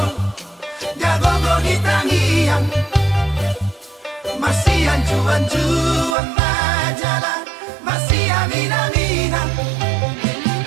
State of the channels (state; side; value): drops out; left; at 6.2 s